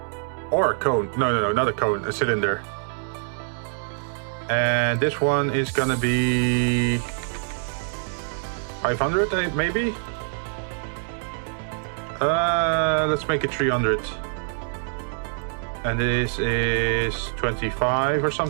Or a cone. No, not a cone, a cylinder. And this one is gonna be 500, maybe? Let's make it 300. And this is 25 or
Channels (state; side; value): silent; left; digital silence